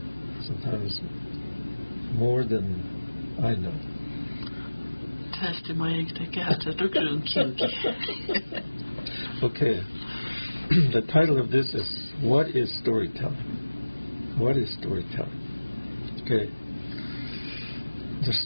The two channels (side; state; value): both; inverted; correlation -1.00